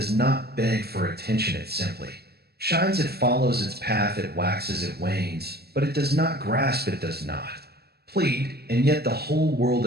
not beg for attention. It simply shines. It follows its path. It waxes, it wanes, but it does not grasp. It does not plead, and yet the whole world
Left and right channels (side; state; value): left; late; 0.47 ms